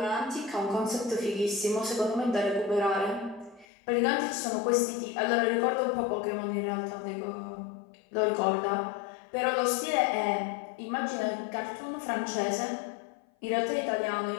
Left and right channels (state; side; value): drops out; right; at 3.7 s